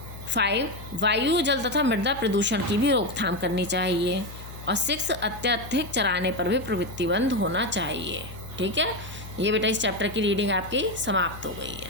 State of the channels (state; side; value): noise; left; hum, 14 dB below the sound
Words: 5, वायु, जल तथा मृदा प्रदूषण की भी रोकथाम करनी चाहिए। और 6, अत्यधिक चराने पर भी प्रतिबंध होना चाहिए। ठीक है, ये बेटा इस चैप्टर की रीडिंग आपकी समाप्त हो गई